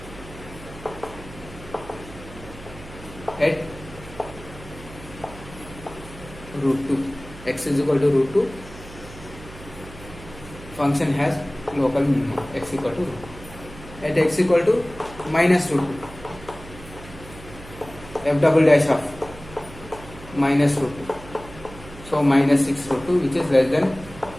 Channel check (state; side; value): noise; right; hum, 17 dB below the sound